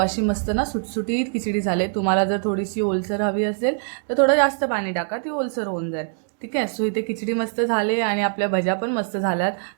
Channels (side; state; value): left; silent; digital silence